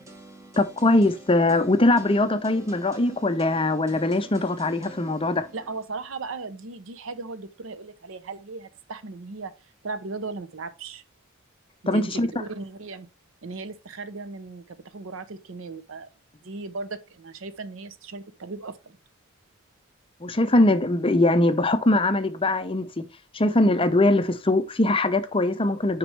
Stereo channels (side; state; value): both; normal; correlation 0.56